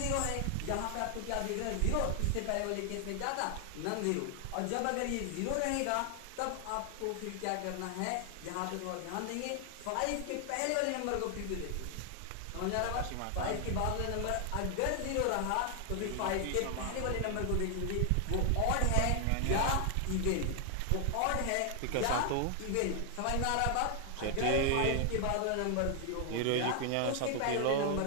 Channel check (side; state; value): both; different; correlation 0.00